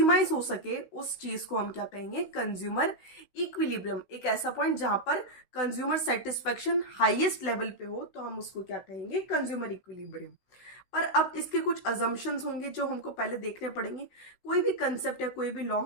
हो सके, उस चीज को हम क्या कहेंगे? Consumer equilibrium. एक ऐसा पॉइंट जहां पर कंज्यूमर सेटिस्फैक्शन हाईएस्ट लेवल पे हो, तो हम उसको क्या कहेंगे? Consumer equilibrium. पर अब इसके कुछ अजम्पशंस होंगे जो हमको पहले देखने पड़ेंगे। कोई भी कंसेप्ट या कोई भी लॉ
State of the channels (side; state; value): right; late; 16 ms